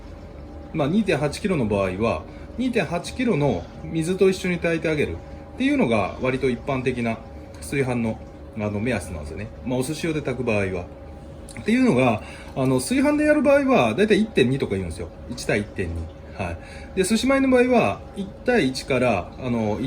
まあ、2.8 キロの場合は2.8 キロの水と一緒に炊いてあげるっていうのが割と一般的な炊飯の目安なんですよね。まあ、お寿司用で炊く場合はっていうのが、炊飯でやる場合はだいたい 1.2 とか言うんですよ。1対 1.2。はい、で寿司米の場合は1対1から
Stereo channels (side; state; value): both; identical; correlation 1.00